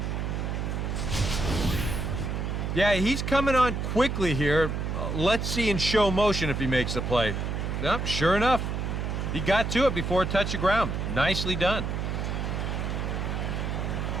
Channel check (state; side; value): noise; right; hum, 2 dB below the sound